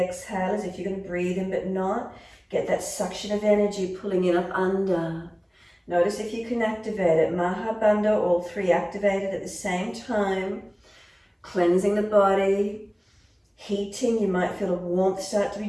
as if you're going to breathe in but not. Get that suction of energy pulling in up under. Notice if you can activate it. Maha Bandha, all three activated at the same time. Cleansing the body, heating. You might feel a warmth start to be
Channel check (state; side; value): identical; both; correlation 1.00